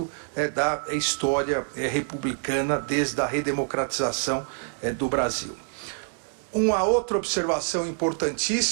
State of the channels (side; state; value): left; silent; 61 dB below the other